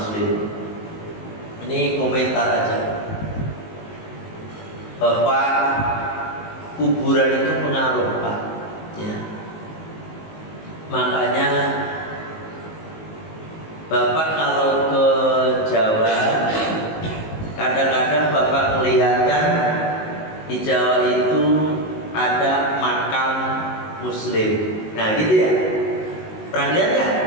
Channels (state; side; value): late; right; 19 ms